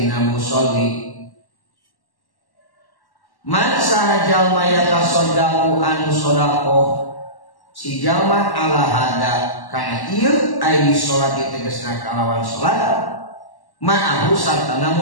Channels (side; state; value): right; late; 1.1 ms